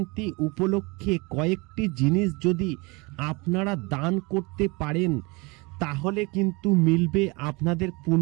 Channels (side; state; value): left; quieter; 26.7 dB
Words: উপলক্ষে কয়েকটি জিনিস যদি আপনারা দান করতে পারেন তাহলে কিন্তু মিলবে আপনাদের